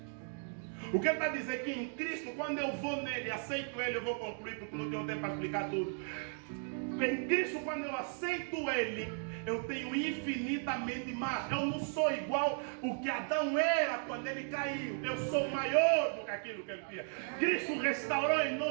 O que ele está dizendo é que em Cristo, quando eu vou nele, aceito ele, eu vou concluir porque não tenho tempo para explicar tudo. Em Cristo, quando eu aceito ele, eu tenho infinitamente mais. Eu não sou igual o que Adão era quando ele caiu. Eu sou maior do que aquilo que ele tinha. Cristo restaurou em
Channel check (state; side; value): silent; left; 54 dB below the other